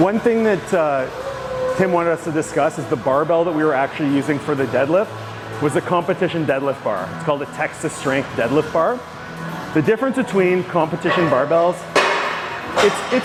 thing that Tim wanted us to discuss is the barbell that we were actually using for the deadlift was a competition deadlift bar. It's called a Texas Strength deadlift bar. The difference between competition barbells,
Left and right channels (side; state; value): both; identical; correlation 1.00